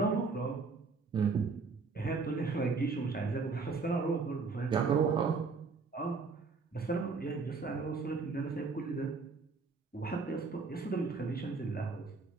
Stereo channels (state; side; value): quieter; left; 4.5 dB